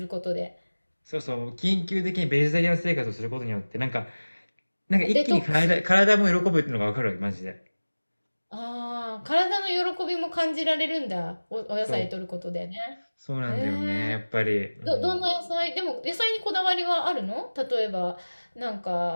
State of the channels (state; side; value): inverted; both; correlation -1.00